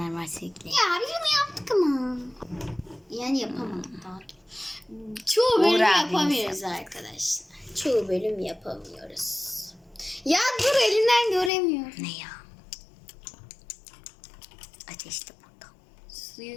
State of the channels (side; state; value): right; drops out; at 11.5 s